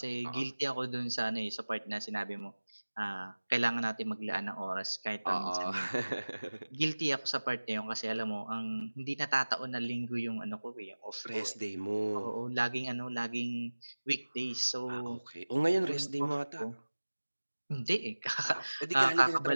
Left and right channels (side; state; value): both; inverted; correlation -1.00